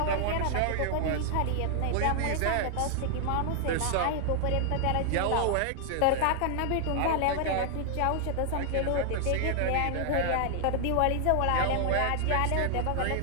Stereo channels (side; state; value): both; different; correlation 0.00